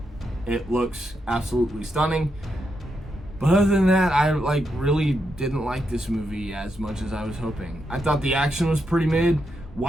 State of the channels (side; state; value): both; normal; correlation 0.82